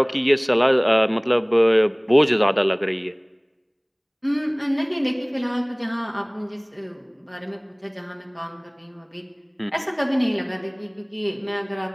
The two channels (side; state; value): both; identical; correlation 1.00